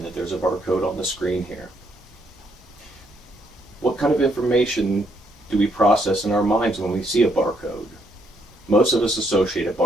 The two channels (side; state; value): both; normal; correlation 0.73